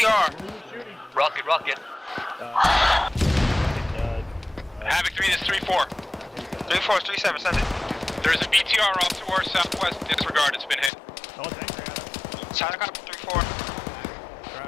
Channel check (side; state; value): right; drops out; at 10.9 s